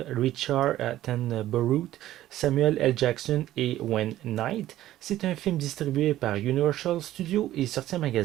Richard Attenborough, Samuel L. Jackson et Wayne Knight. C'est un film distribué par Universal Studios et sorti en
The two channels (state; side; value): quieter; left; 14.0 dB